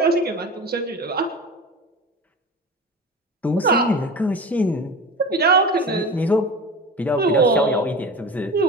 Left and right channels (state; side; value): normal; both; correlation 0.32